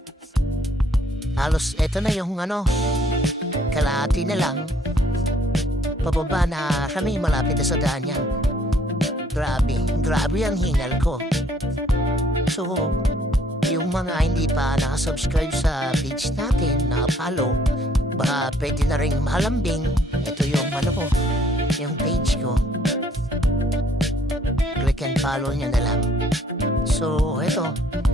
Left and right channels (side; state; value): both; normal; correlation 0.63